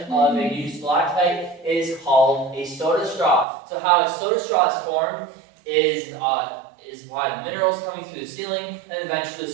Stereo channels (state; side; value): drops out; left; at 3.5 s